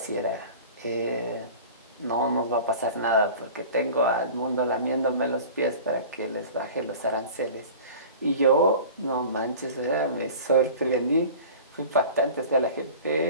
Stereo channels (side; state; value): both; inverted; correlation -0.39